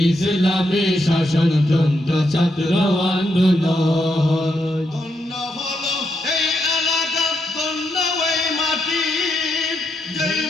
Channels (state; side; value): normal; both; correlation 0.80